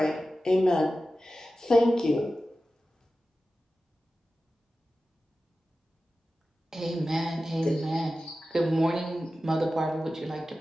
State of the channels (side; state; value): both; normal; correlation 0.94